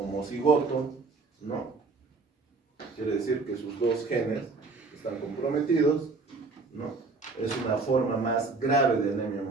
¿no? Quiere decir que sus dos genes están comprometidos, ¿no? Es una forma más grave de anemia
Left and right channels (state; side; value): quieter; left; 4.0 dB